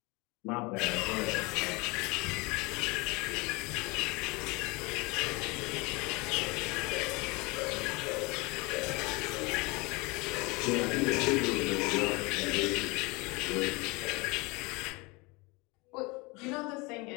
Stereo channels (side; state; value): right; quieter; 26.0 dB